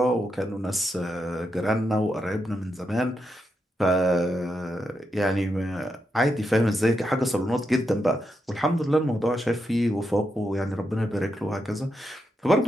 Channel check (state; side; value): normal; both; correlation 0.84